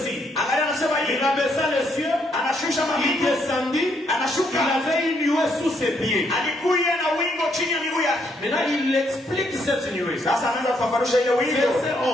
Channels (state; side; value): normal; both; correlation 0.73